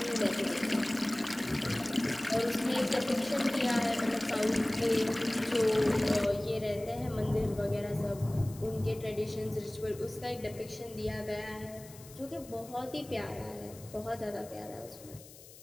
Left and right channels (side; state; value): left; noise; hiss, 19 dB below the sound